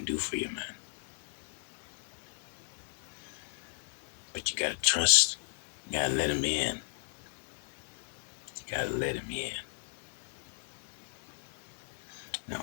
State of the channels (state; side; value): silent; right; digital silence